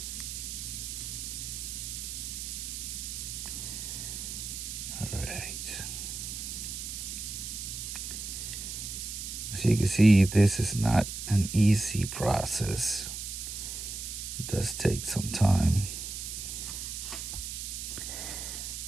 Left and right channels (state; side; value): noise; right; hiss, 6 dB below the sound